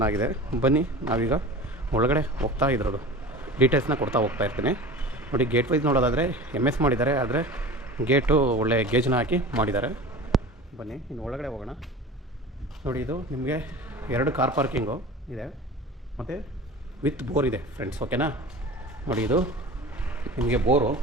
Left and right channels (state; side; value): normal; both; correlation 0.37